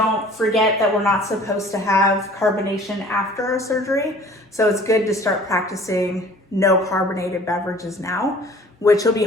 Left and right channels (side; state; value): both; normal; correlation 0.49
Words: forget that we're not supposed to have carbonation after a surgery. So it's good to start practicing no carbonated beverages now, which will be